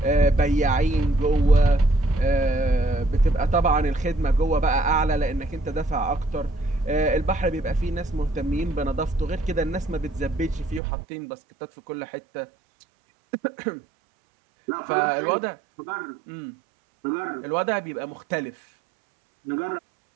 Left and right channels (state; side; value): drops out; left; at 10.8 s